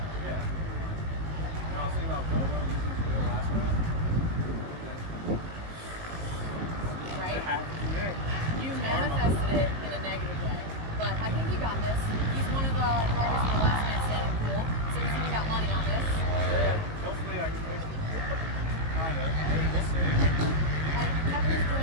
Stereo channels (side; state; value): left; late; 18 ms